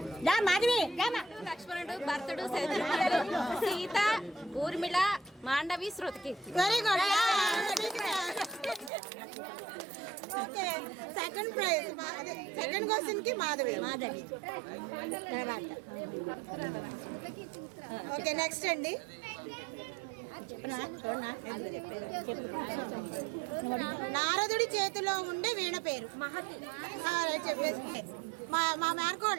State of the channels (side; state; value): left; drops out; at 8.9 s